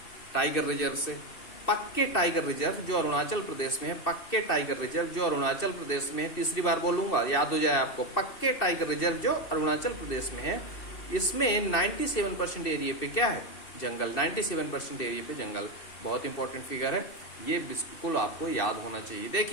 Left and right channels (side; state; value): right; late; 2.6 ms